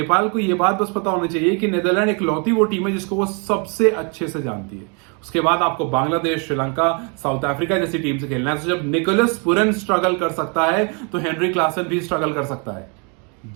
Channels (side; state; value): left; quieter; 35.7 dB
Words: को यह बात बस पता होनी चाहिए कि नीदरलैंड इकलौती वो टीम है जिसको वो सबसे अच्छे से जानती है. उसके बाद आपको बांग्लादेश, श्रीलंका, साउथ अफ्रीका जैसी टीम से खेलना है. तो जब निकोलस पुरन स्ट्रगल कर सकता है तो हेनरी क्लासन भी स्ट्रगल कर सकता है.